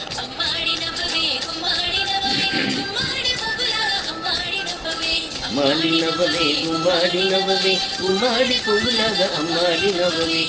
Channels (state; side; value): identical; both; correlation 1.00